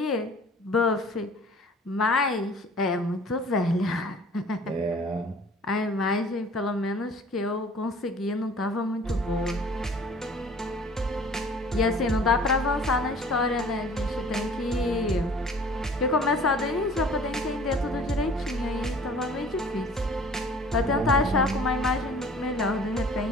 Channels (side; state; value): both; normal; correlation 0.49